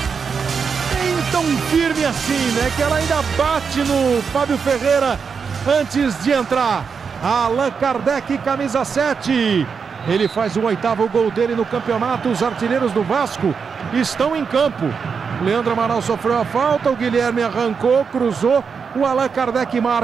Nem tão firme assim, né? Que ela ainda bate no Fábio Ferreira antes de entrar. Allan Kardec, camisa 7. Ele faz o 8º gol dele no campeonato. Os artilheiros do Vasco estão em campo. Leandro Amaral sofreu a falta, o Guilherme arrancou, cruzou. O Allan Kardec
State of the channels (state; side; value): quieter; left; 5.9 dB